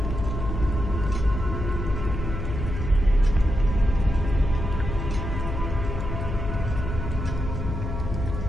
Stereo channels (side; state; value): left; noise; hum, 5 dB below the sound